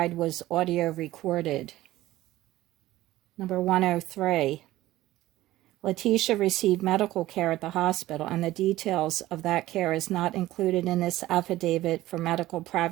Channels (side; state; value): left; quieter; 16.0 dB